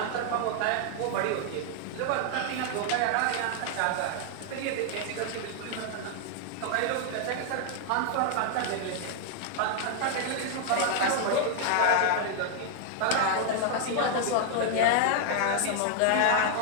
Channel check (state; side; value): different; both; correlation 0.00